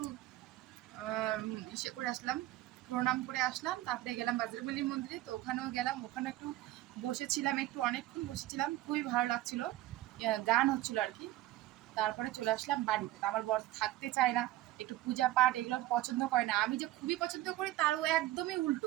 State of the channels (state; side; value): quieter; left; 15.9 dB